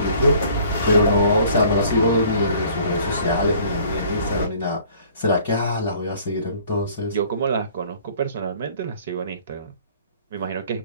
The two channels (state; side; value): inverted; both; correlation -0.54